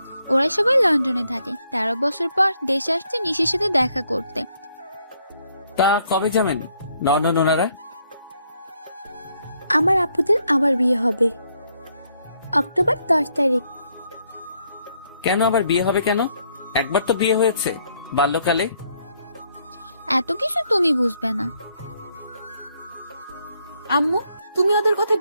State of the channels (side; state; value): both; inverted; correlation -0.72